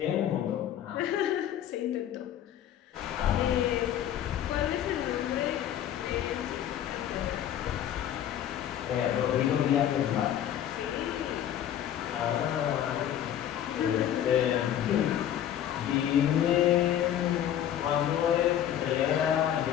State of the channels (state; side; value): quieter; right; 10.7 dB